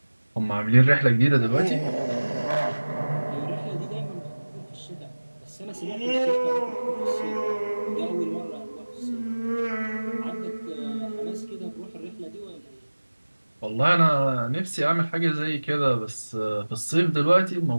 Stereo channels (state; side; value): inverted; both; correlation -1.00